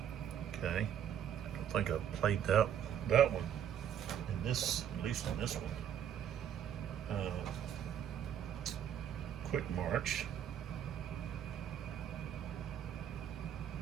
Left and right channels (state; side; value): quieter; left; 9.4 dB